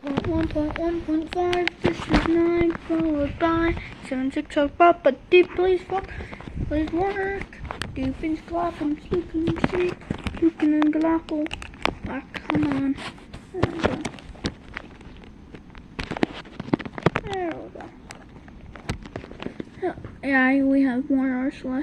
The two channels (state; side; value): identical; both; correlation 1.00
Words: 1.1.5, this is 9, followed by 7, 6, so Papa deep, please work. Deepens glock'em, sleeping sleep, puking and glockle. Ah, come on. There we go. Yeah, we have more